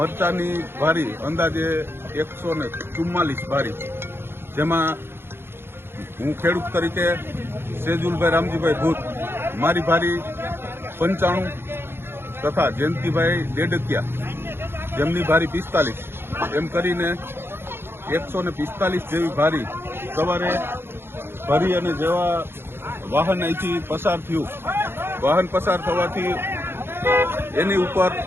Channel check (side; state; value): left; late; 0.11 ms